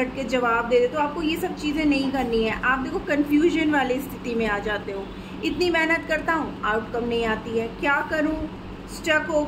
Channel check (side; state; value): both; identical; correlation 1.00